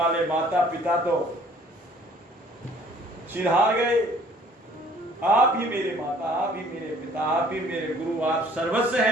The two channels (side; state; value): both; normal; correlation 0.56